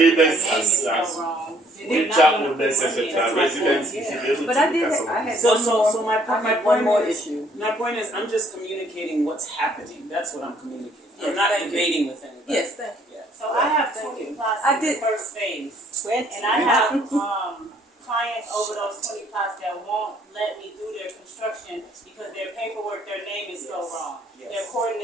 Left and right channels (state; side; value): normal; both; correlation 0.63